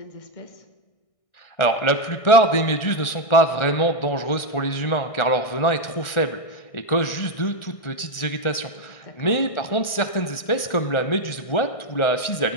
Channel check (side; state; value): right; late; 1.4 ms